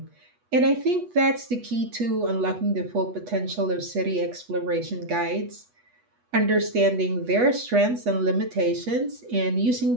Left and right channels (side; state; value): left; late; 8.2 ms